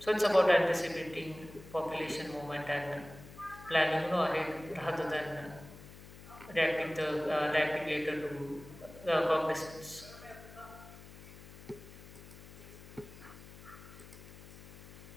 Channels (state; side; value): noise; left; hum, 17 dB below the sound